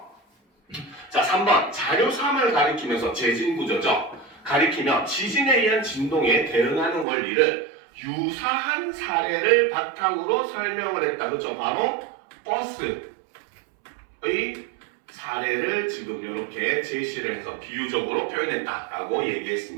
자, 3번 자료 3을 가리키면서 재진 구조죠. 가리키며 지진에 의한 진동에 대응하는 원리를 유사한 사례를 바탕으로 설명을 했다. 그렇죠? 바로 버스의 사례를 지금 이렇게 제시를 해서 비유적으로 표현했다라고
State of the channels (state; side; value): drops out; left; at 7.1 s